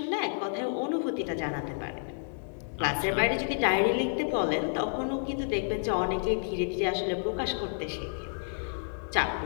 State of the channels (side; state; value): right; silent; digital silence